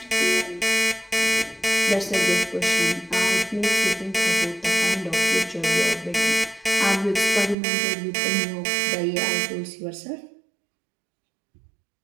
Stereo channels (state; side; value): drops out; left; at 7.6 s